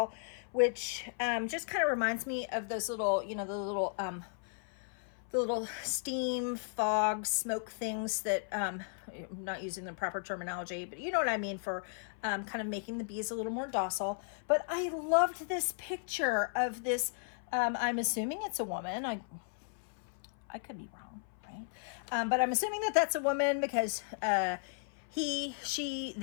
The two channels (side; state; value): right; silent; 54 dB below the other